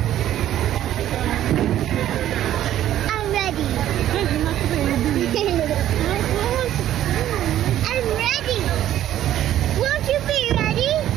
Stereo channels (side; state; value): left; quieter; 12.3 dB